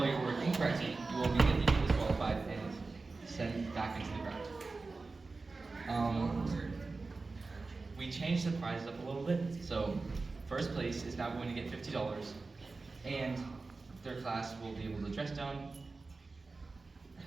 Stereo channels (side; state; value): left; quieter; 3.8 dB